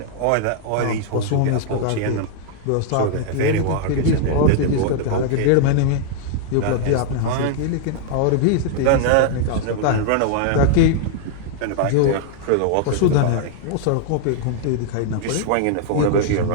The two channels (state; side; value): different; both; correlation -0.01